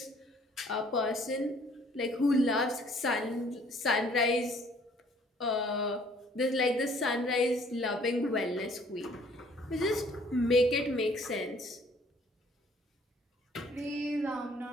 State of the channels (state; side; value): normal; both; correlation 0.59